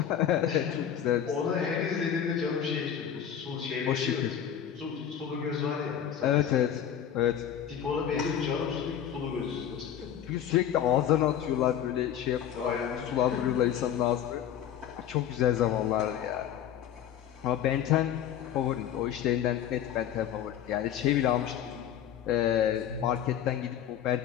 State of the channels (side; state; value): right; quieter; 9.6 dB